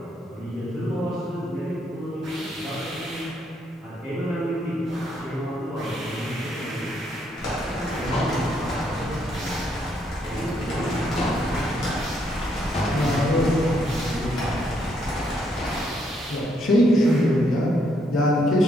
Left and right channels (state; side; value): normal; both; correlation 0.73